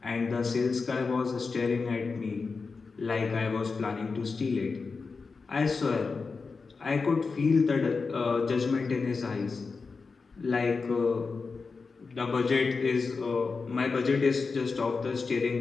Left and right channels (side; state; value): right; quieter; 4.6 dB